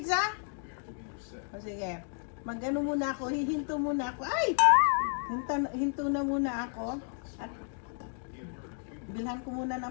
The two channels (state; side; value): silent; right; 56 dB below the other